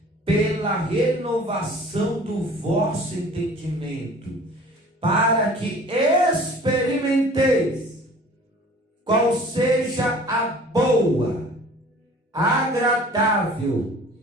pela renovação do vosso entendimento, para que experimenteis qual seja a boa, agradável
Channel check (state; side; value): normal; both; correlation 0.47